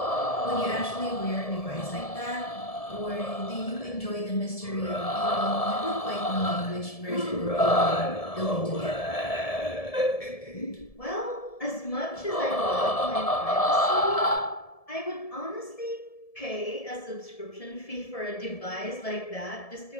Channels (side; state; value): right; late; 1.7 ms